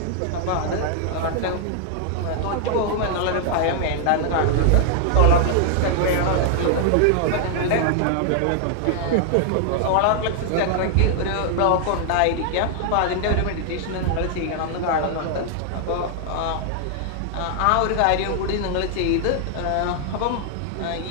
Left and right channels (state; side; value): different; both; correlation -0.01